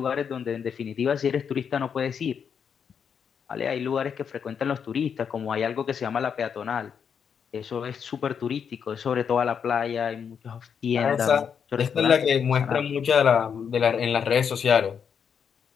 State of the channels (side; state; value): right; quieter; 7.2 dB